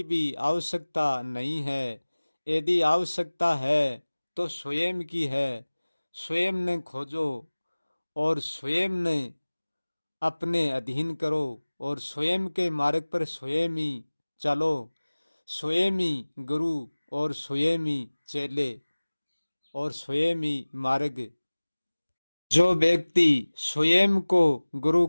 भी आवश्यकता नहीं है। यदि आवश्यकता है तो स्वयं की है। स्वयं ने खोजो और स्वयं ने अपने अधीन करो और स्वयं के मार्ग पर स्वयं ही चलो। स्वयं ही गुरु और स्वयं ही चेले और स्वयं ही मार्ग। जो व्यक्ति स्वयं को गुरु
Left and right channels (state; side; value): inverted; both; correlation -1.00